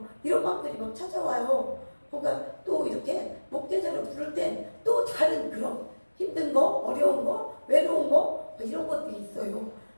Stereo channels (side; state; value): both; inverted; correlation -1.00